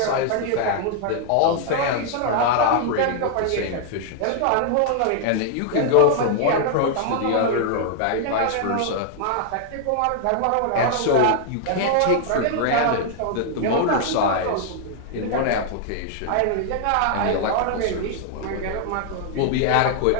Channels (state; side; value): different; both; correlation -0.01